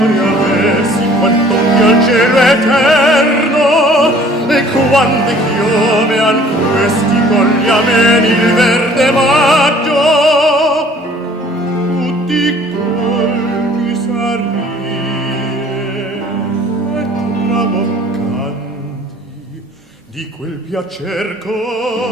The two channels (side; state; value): both; normal; correlation 0.53